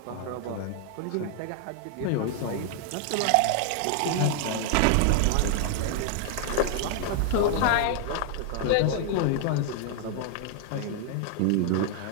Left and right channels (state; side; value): different; both; correlation 0.00